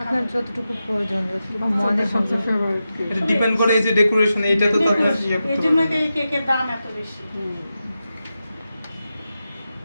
আপনার যতটুকু প্রয়োজন, যতটুকু মনে হবে। সবচেয়ে ফেভারিট কি? এটা ডিপেন্ড করে এই যে ডেকোরেশন, এইটা তো আপনার ইয়ে এই করতে জন্য পারবেন। এই কেকের দাম এত বেশি।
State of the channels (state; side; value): inverted; both; correlation -0.91